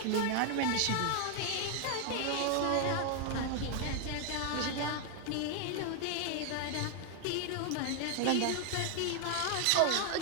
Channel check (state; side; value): different; both; correlation 0.00